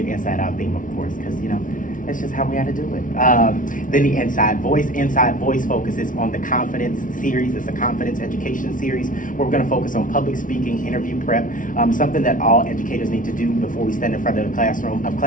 inside out theme, of course, because that's just how we had to do it. Then the Inside Voice. Inside Voice focuses on the confidence series. It's a confidence education series where we're going to focus on public speaking, interview prep, something that all educators need to do before we stand in front of the classroom, of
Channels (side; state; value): right; late; 0.38 ms